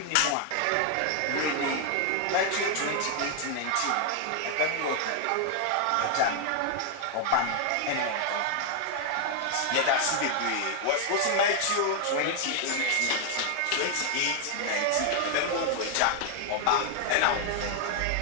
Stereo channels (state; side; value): different; both; correlation 0.00